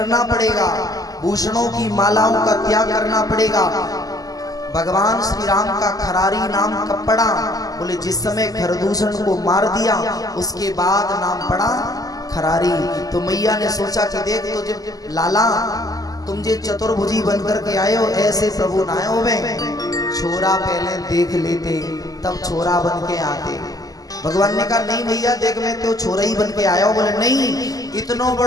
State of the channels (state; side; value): late; right; 0.17 ms